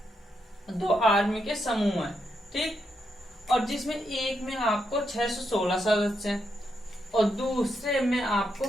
दो आर्मी के समूह है, ठीक, और जिसमें एक में आपको 616 सदस्य हैं और दूसरे में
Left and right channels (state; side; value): normal; both; correlation 0.81